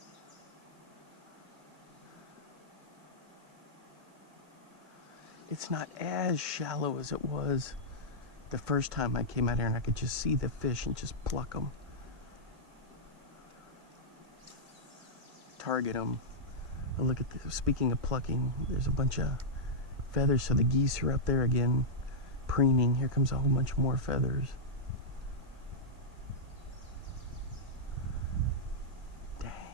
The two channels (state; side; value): late; left; 1.9 ms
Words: It's not as shallow as it was the first time I came out here, and I could just see the fish and just pluck them. Target them. Oh, look at this. Speaking of plucking, there's a bunch of feathers, so the geese are up there again preening. Here comes a whole bunch more feathers. Dang.